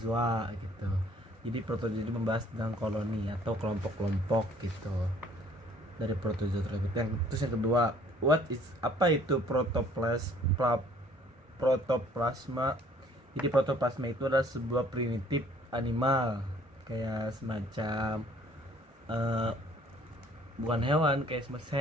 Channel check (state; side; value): normal; both; correlation 0.58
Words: gitu. Jadi protozoa itu membahas tentang koloni atau kelompok-kelompok gitu dari protozoa tersebut. Terus yang kedua, apa itu protoplasma? Jadi protoplasma itu adalah sebuah primitif animal, kayak semacam bukan hewan, kayak semacam